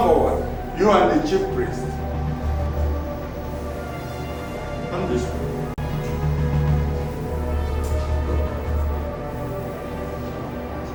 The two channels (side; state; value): both; identical; correlation 1.00